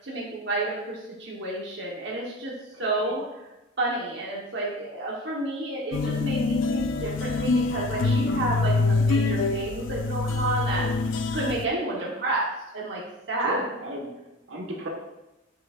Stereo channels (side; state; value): both; normal; correlation 0.38